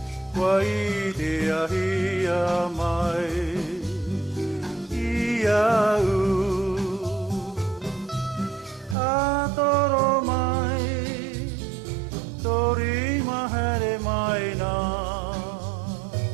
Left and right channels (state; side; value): drops out; left; at 9.0 s